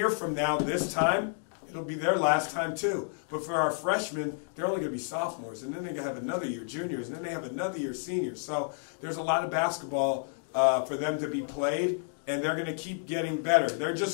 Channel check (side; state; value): right; silent; digital silence